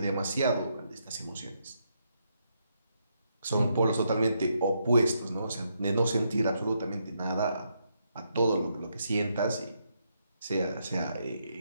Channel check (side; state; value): both; inverted; correlation -0.78